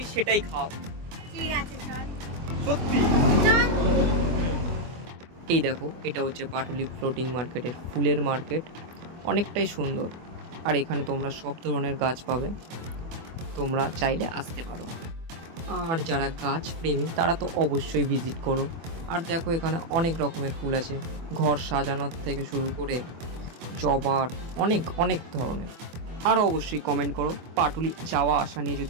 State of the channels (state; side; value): late; left; 24 ms